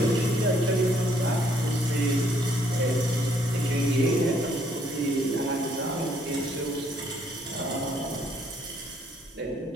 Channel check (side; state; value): both; normal; correlation 0.67